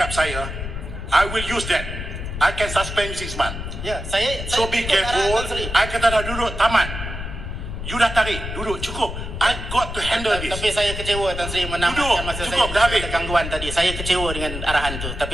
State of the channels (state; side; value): noise; left; rumble, 7 dB below the sound